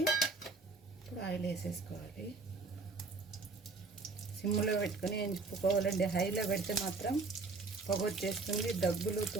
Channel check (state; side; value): quieter; left; 3.8 dB